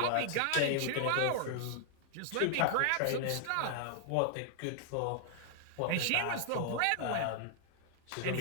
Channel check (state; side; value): different; both; correlation 0.00